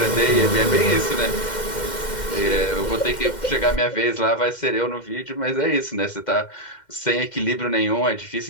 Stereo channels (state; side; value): late; right; 2.1 ms